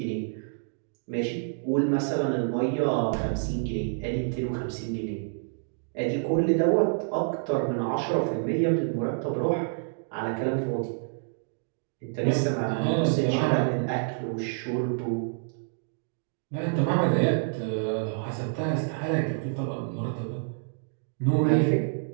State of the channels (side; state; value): left; silent; digital silence